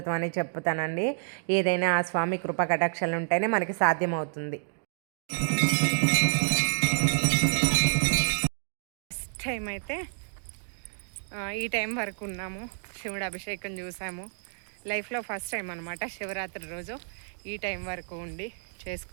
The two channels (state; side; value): silent; left; digital silence